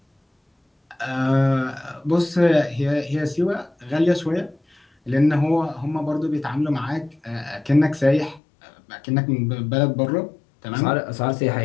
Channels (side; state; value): right; drops out; at 8.4 s